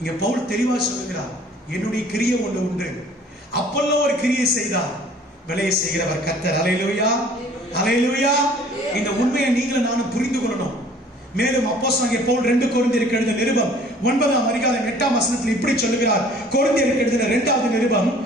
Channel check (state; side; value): normal; both; correlation 0.53